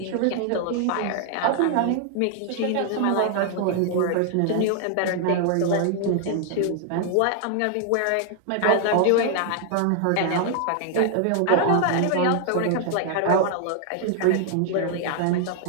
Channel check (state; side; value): different; both; correlation 0.00